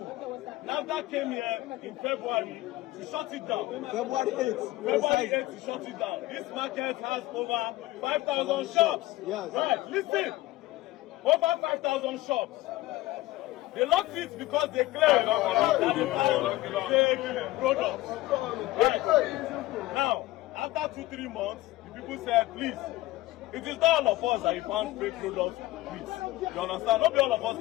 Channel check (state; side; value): quieter; right; 17.8 dB